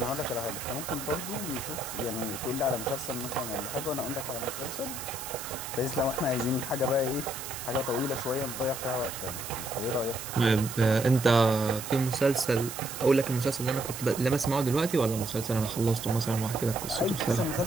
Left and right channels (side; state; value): right; noise; hiss, 9 dB below the sound